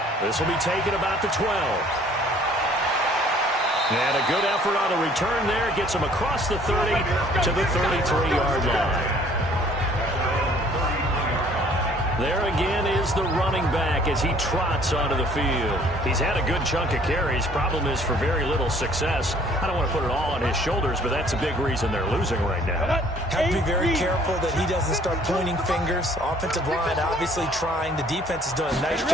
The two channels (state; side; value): normal; both; correlation 0.57